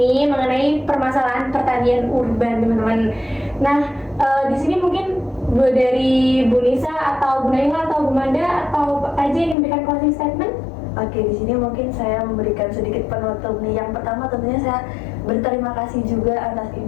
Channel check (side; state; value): right; drops out; at 9.6 s